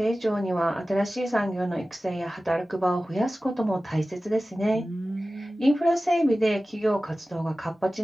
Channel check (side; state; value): both; normal; correlation 0.96